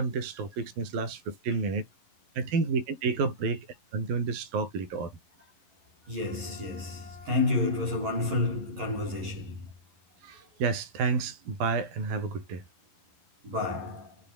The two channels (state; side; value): late; left; 11 ms